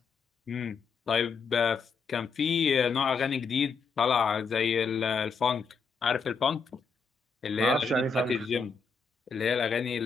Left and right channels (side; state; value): right; quieter; 5.1 dB